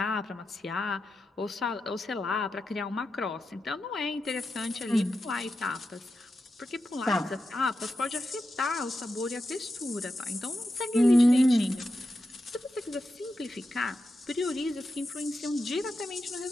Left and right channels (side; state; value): both; normal; correlation 0.89